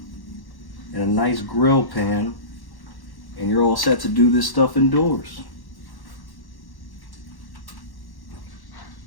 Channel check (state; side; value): late; right; 1.1 ms